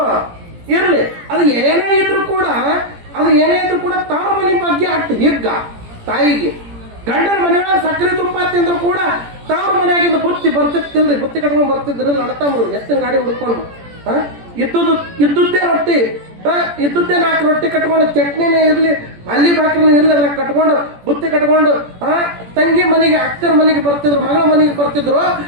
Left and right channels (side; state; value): left; late; 17 ms